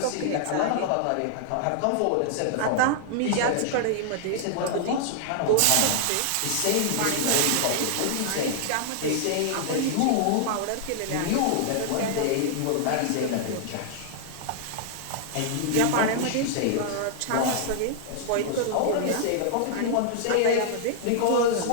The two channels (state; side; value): different; both; correlation -0.01